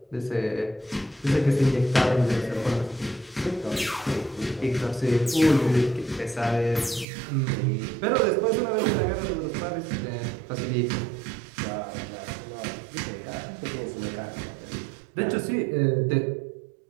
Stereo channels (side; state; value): left; drops out; at 7.1 s